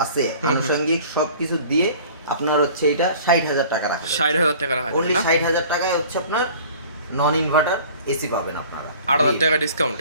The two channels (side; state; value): both; inverted; correlation -0.46